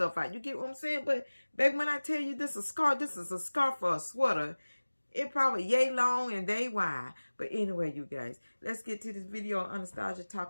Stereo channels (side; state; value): both; inverted; correlation -1.00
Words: out. You get what I'm saying? But back when I tell you this is a scarf, this is a scarf for a sweater. It probably yay long and they wide. But anyway, you guys, let's get to this video on Anastasia